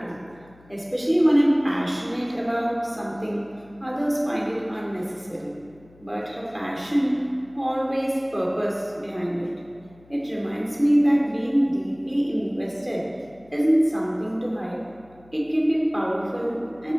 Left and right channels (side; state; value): left; noise; hum, 26 dB below the sound